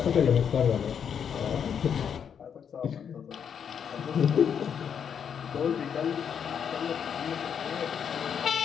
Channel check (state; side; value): quieter; right; 7.7 dB